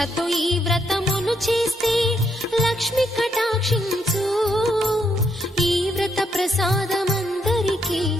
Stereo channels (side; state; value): both; normal; correlation 0.75